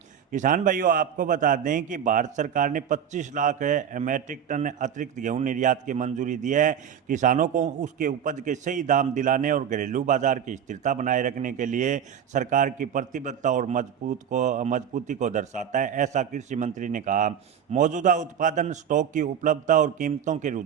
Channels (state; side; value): quieter; left; 8.6 dB